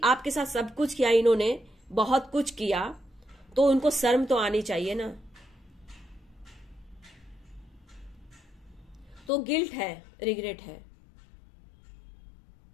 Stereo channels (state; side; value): drops out; right; at 9.3 s